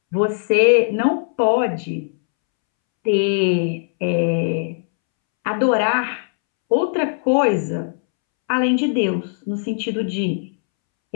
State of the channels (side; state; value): right; silent; 66 dB below the other